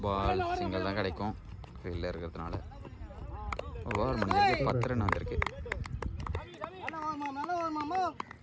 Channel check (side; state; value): both; identical; correlation 1.00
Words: ball, single தான் கிடைக்கும் ஃபீல்டில் இருக்கிறதுனால. ஓவர் முடிஞ்சிருக்கு, 10 ரன் வந்திருக்கு.